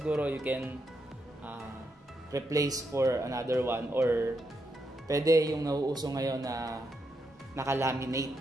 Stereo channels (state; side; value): normal; both; correlation 0.82